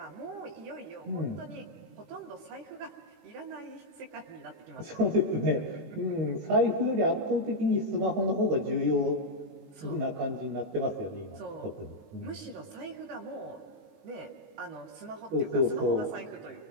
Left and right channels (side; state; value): left; late; 19 ms